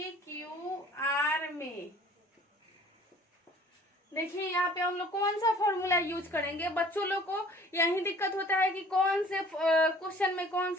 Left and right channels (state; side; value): normal; both; correlation 0.51